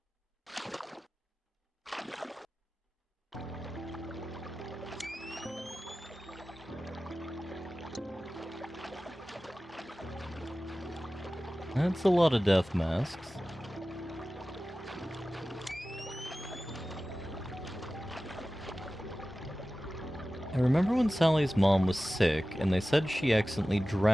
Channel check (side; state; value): both; normal; correlation 0.96